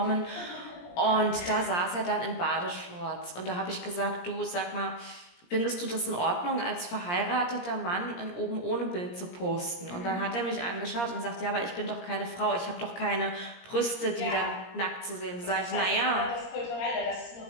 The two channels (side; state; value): right; late; 17 ms